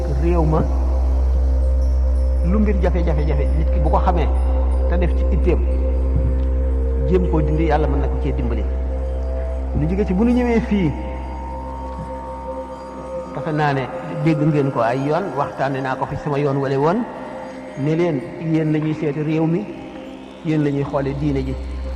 réew ma lu mbir jafe-jafe nit ki bu ko xamee te def ci itteem jéem koo dindi yàlla mën na ko cee dimbali ñu jóge ci bu ñu ñëwee fii defe naa ne dégg ngeen ko ay yoon waxtaane naa ko fi sama yoon wala woon ne leen yéen la ñuy seeti réew mi yéen la ñuy xoole diine ji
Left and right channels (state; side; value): identical; both; correlation 1.00